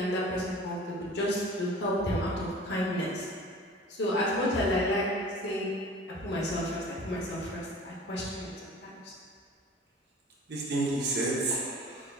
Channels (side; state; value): both; normal; correlation 0.44